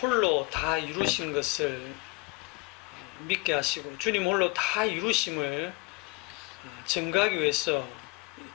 다 이루신 것을 믿게 하시고 주님 홀로 다 이루심을 증거하기 위해서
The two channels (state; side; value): quieter; right; 27.5 dB